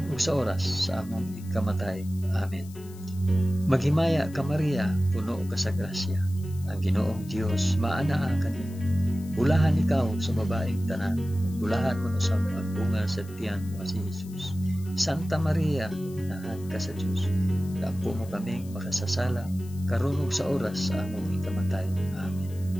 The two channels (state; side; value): noise; left; hiss, 22 dB below the sound